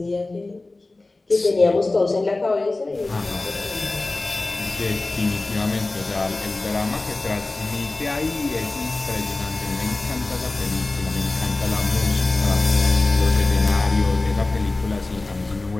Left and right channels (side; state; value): right; quieter; 3.1 dB